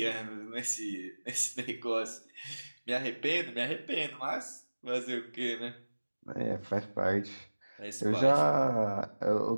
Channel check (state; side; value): inverted; both; correlation -1.00